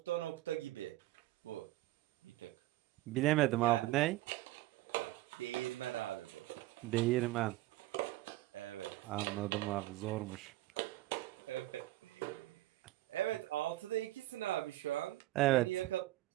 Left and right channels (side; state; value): left; quieter; 17.0 dB